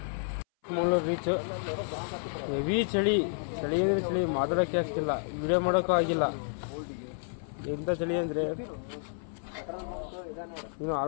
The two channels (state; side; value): silent; right; 57 dB below the other